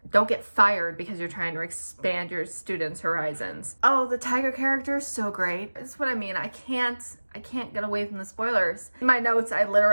don't get fired because you're trying to expand your students' horizons. Oh, the tiger character is so great. That's what I mean. I can't get away from the spoilers. In my notes, I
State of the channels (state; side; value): inverted; both; correlation -1.00